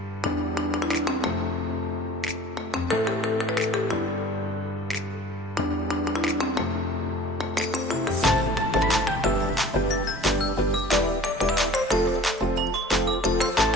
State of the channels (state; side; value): normal; both; correlation 0.45